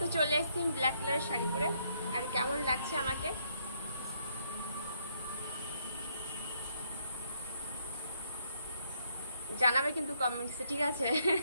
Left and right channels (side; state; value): both; inverted; correlation -0.73